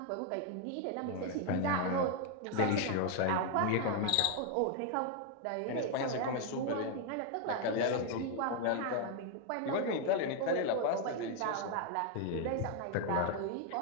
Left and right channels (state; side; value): different; both; correlation 0.00